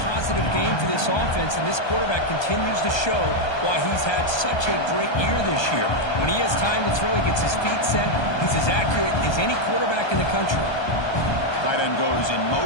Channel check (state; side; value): late; right; 1.2 ms